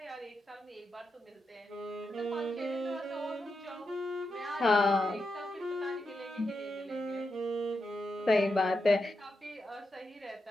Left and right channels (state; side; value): normal; both; correlation 0.86